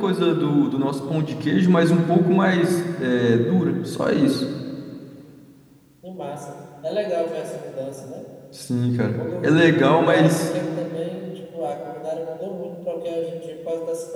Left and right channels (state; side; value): identical; both; correlation 1.00